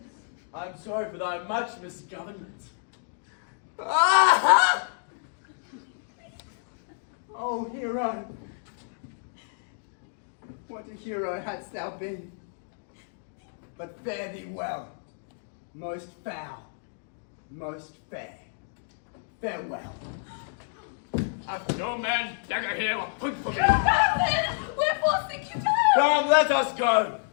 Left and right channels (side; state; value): right; silent; digital silence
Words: I'm sorry for thy much misgovernment. Ah! Oh, Hero. What a hero hadst thou been. But fare thee well. Most foul, most fair. Farewell. Hath no man dagger here or point for me? Wherefore think you to her? Come, let us go.